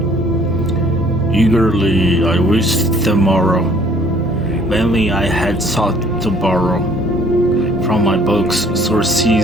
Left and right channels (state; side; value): noise; right; hum, 23 dB below the sound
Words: Eagerly I wished the morrow, vainly I had sought to borrow from my books